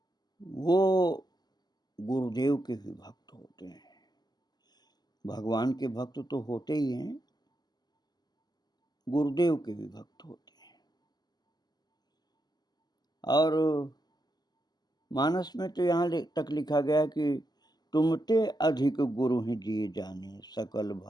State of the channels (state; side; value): late; right; 0.20 ms